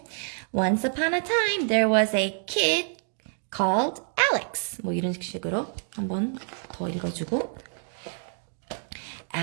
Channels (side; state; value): left; silent; 56 dB below the other